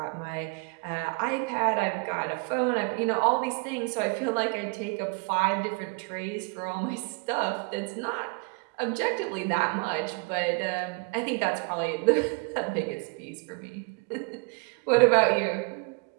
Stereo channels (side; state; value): left; quieter; 31.3 dB